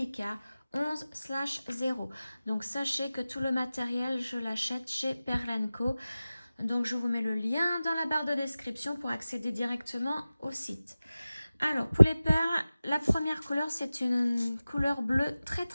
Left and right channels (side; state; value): both; inverted; correlation -0.96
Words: 11/0. Donc sachez que tout le matériel, je l'achète chez Perle & Co. Donc je vous mets le lien dans la barre de description pour accéder directement au site. Alors, pour les perles, la première couleur, c'est une couleur bleue très